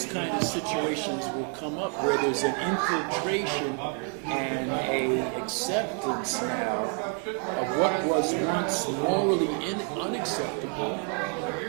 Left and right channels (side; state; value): left; quieter; 36.2 dB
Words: kind of situations will come up where there's an infiltration and a acceptance now of what was once morally unacceptable